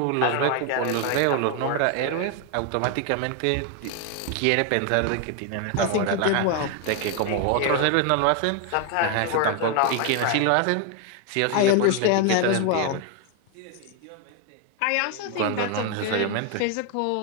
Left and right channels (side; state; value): both; different; correlation 0.01